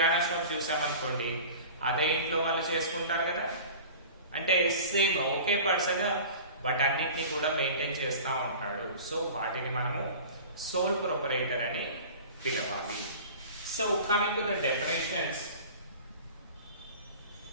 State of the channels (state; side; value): inverted; both; correlation -0.39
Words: షాప్ చూసామనుకోండి, అదే ఇంట్లో వాళ్ళు చేసుకుంటారు కదా. అంటే సేమ్ ఒకే పర్సన్ వాటన్నిటిని కూడా మెయింటైన్ చేస్తూ ఉంటాడు. సో వాటిని మనము సోల్ ప్రొపరైటర్ అని పిలవాలి. So coming to the definitions,